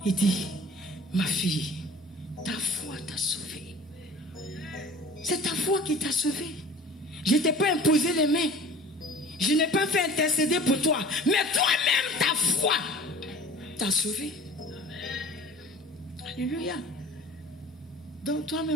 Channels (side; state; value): both; normal; correlation 0.44